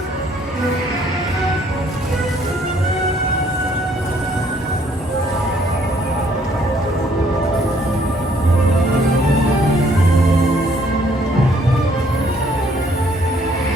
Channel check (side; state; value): both; normal; correlation 0.64